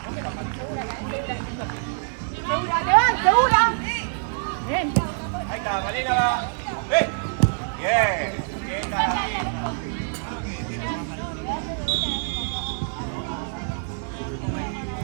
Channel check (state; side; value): silent; left; digital silence